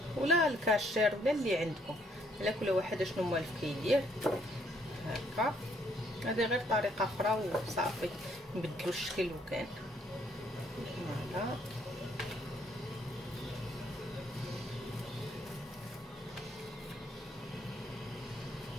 ولا الكاشير ولا اللي عندكم، على كل واحد شنو موالف كيدير هكا. هذه غير طريقه اخرى وصافي نبدلو الشكل وكان فوالا.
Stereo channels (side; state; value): both; normal; correlation 0.68